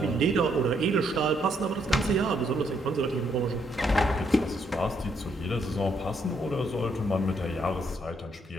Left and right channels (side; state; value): both; normal; correlation 0.73